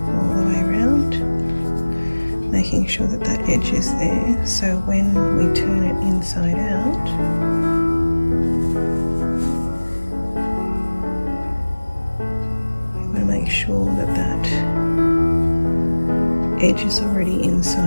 the way around. making sure that that edge is there, so when we turn it inside out, we want to make sure that that edge is already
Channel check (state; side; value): inverted; both; correlation -1.00